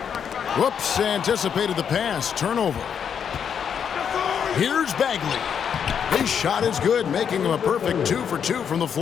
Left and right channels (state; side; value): quieter; right; 7.7 dB